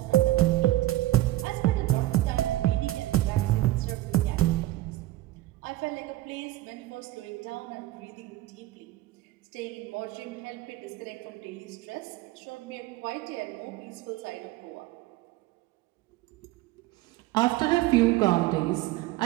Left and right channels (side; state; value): left; quieter; 16.7 dB